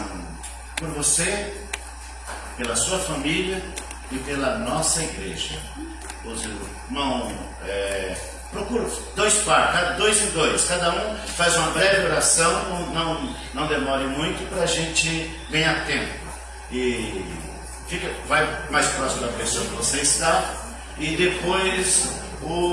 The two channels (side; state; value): both; identical; correlation 1.00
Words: por você, pela sua família e pela nossa igreja. Os irmãos, procura dois par, dois em dois. Cada um faz uma breve oração, não demore muito para a gente ganhar tempo. E vai mais próximo da pessoa que você está. E depois